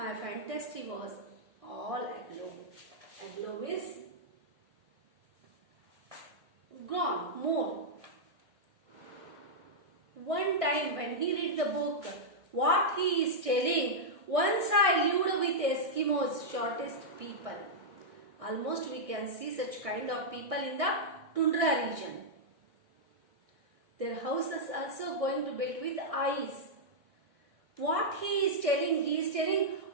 fantasy was all aglow. Aglow means gone, more. One time when he read the book, what he is telling, once I lived with Eskimos, shortest people. Almost we can see such kind of people in the tundra region. Their houses also going to build with ice. What he is telling,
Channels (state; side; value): late; left; 1.6 ms